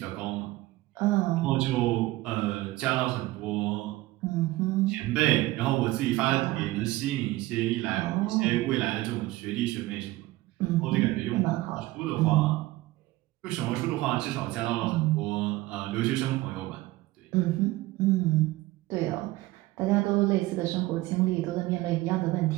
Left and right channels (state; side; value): quieter; left; 18.3 dB